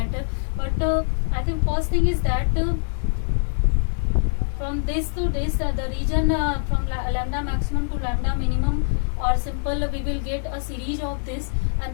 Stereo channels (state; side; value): silent; right; digital silence